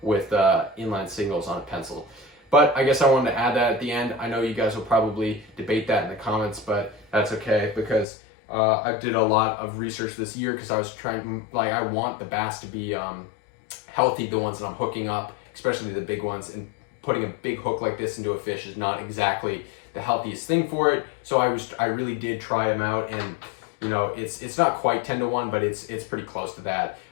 with inline singles on a pencil. But I guess I wanted to add that at the end. I know you guys will probably debate that in the comments, but that's okay, because I did a lot of research this year, because I was trying, like, I want the bass to be healthy, the ones that I'm hooking up, especially the big ones, and putting a big hook like this into a fish is not exactly the healthiest thing for it. So I really did try them out, and you know, it's not quite 10 to 1, but it's pretty close to that.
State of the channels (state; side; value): drops out; right; at 8.1 s